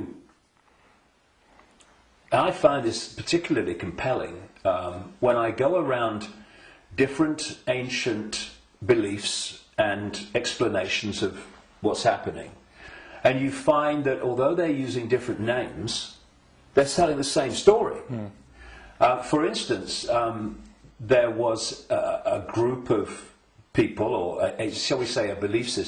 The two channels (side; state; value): both; identical; correlation 1.00